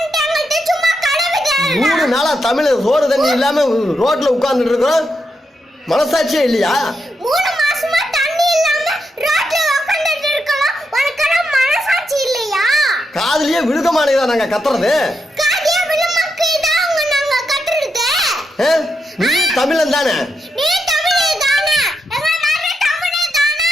எங்களுக்கு சும்மா கதை விடாத. 3 நாளா தமிழ் சோறு தண்ணி இல்லாம ரோட்ல உட்கார்ந்துட்டு இருக்கோம். மனசாட்சியே இல்லையா? 3 மாசமா தண்ணி இல்லாம ரோட்ல உட்கார்ந்துட்டு இருக்கோம். உனக்கு மனசாட்சி இல்லையா? காதுலயே விழுக மாட்டேங்குதா நாங்க கத்துறது? காதியா விழுமக்கு தான் உங்க நாங்க கத்துறது. நீ தமிழன் தானே? நீ தமிழே தானே? எங்க நானே தமிழே தானே?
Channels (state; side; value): normal; both; correlation 0.83